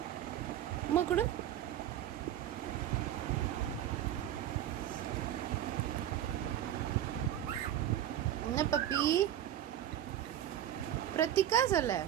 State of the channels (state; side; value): quieter; left; 11.4 dB